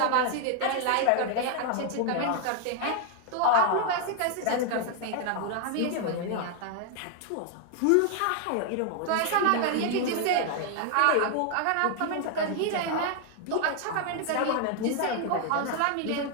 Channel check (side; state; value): both; different; correlation 0.00